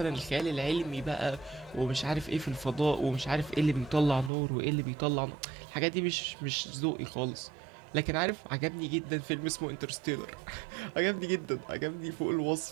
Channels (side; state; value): left; drops out; at 4.3 s